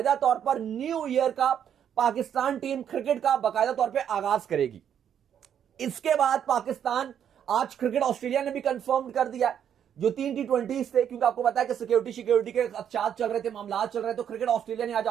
तौर पर न्यू ईयर का पाकिस्तान टीम क्रिकेट का बाकायदा तौर पर आगाज करेगी। इसके बाद पाकिस्तान, आज क्रिकेट ऑस्ट्रेलिया ने भी कंफर्म कर दिया जो 3 T20 थे, क्योंकि आपको पता है कि सिक्योरिटी के चार्ज चल रहे थे, मामला चल रहे, तो क्रिकेट ऑस्ट्रेलिया ने आज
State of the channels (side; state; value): left; quieter; 9.0 dB